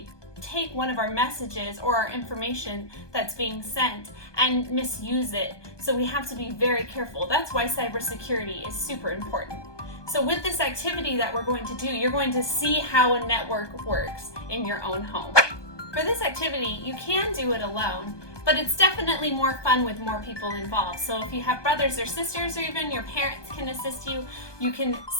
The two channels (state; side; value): late; right; 1.2 ms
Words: take one of our messages or our information that's being sent and misuse it. So we have to be very careful. That's why cybersecurity is super important. So with this activity that we're going to do, you're going to see how a network works in your own home. For this activity, you can do it alone, but it's definitely more fun with more people involved. So if you have brothers or sisters, or even your parents can assist you, you can